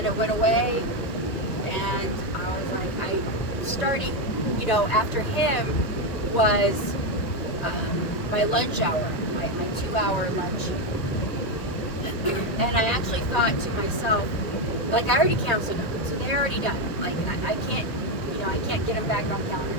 it went away. And I was like, starting, after him was my lunch hour, my 2-hour lunch. And I actually thought to myself, like, I already canceled them, so they're already done. Like, I can't, I can't get them back on calendar,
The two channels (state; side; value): late; right; 1.9 ms